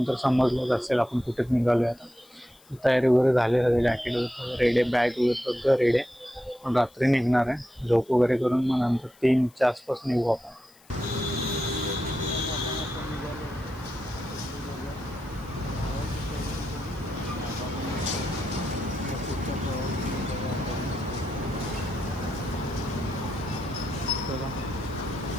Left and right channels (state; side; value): noise; left; hiss, 27 dB below the sound